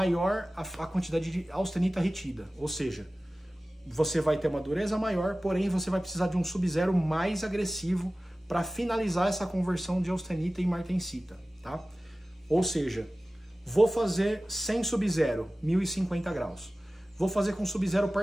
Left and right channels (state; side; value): normal; both; correlation 0.97